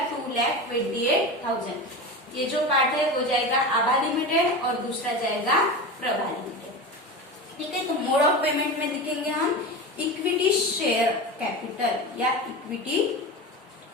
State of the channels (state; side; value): normal; both; correlation 0.26